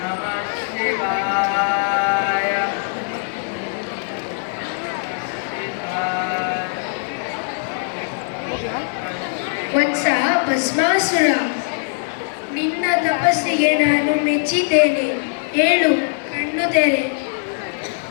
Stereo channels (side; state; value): right; silent; digital silence